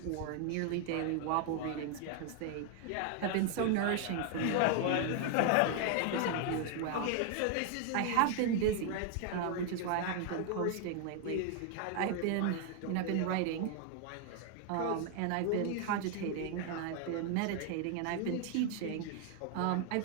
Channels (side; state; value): both; different; correlation 0.00